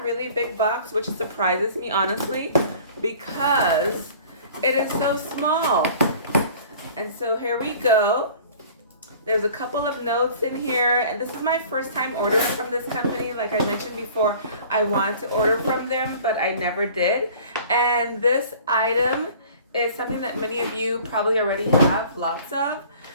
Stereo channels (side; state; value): both; inverted; correlation -0.48